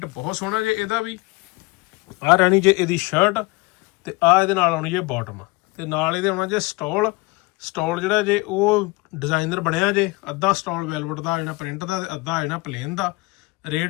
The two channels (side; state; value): right; quieter; 23.2 dB